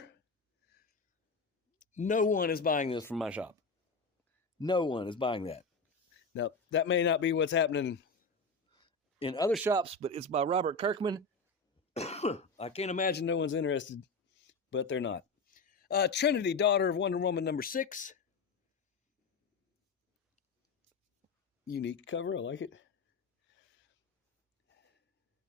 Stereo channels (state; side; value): quieter; right; 3.9 dB